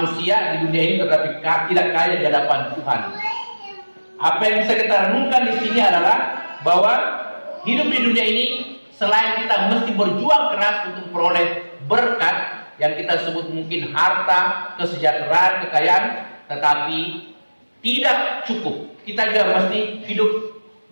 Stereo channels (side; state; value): both; inverted; correlation -1.00